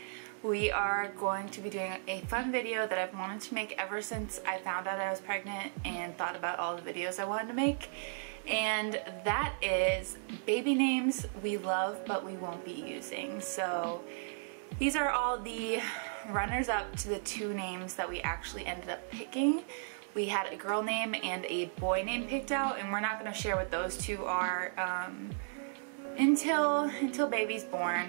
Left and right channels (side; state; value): left; silent; 54 dB below the other